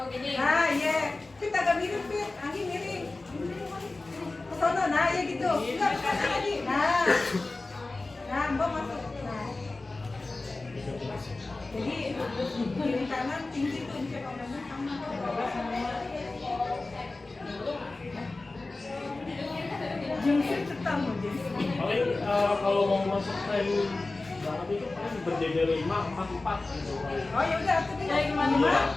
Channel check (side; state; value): right; quieter; 3.3 dB